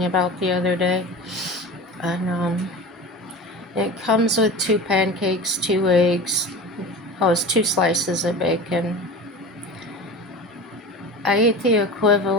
about the other day. And it comes with 2 pancakes, 2 eggs. Oh, it's 2 slices of bacon. I ate the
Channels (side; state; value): both; normal; correlation 0.33